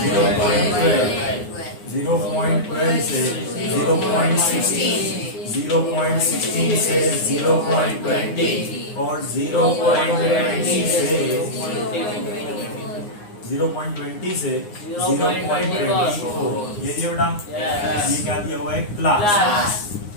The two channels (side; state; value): right; late; 9.7 ms